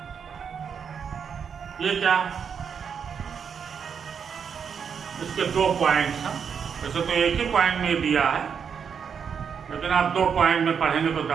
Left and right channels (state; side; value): quieter; left; 6.9 dB